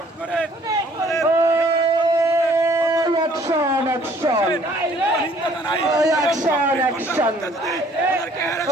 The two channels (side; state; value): both; normal; correlation 0.59